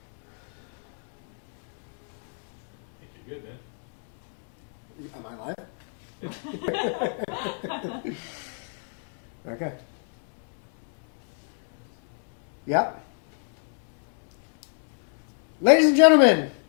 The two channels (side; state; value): right; silent; digital silence